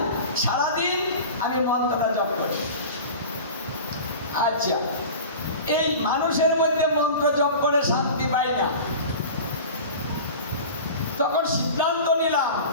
সারাদিন আমি মন্ত্রটা জপ করি। আচ্ছা, এই মানুষের মধ্যে মন্ত্র জপ করে শান্তি পাই না। তখন সিদ্ধান্ত নিলাম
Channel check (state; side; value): inverted; both; correlation -0.35